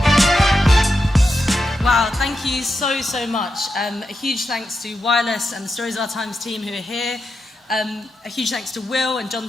So much. A huge thanks to Wireless and the Stories of Our Times team who are here. A huge thanks to Will and John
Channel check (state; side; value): normal; both; correlation 0.87